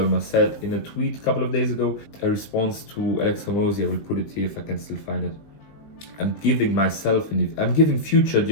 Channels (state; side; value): late; right; 19 ms